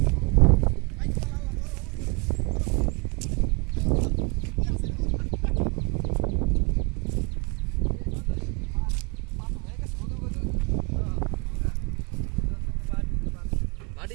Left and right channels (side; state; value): left; quieter; 30.6 dB